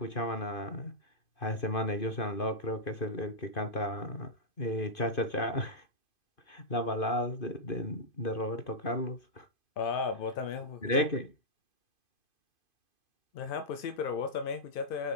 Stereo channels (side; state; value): right; late; 2.5 ms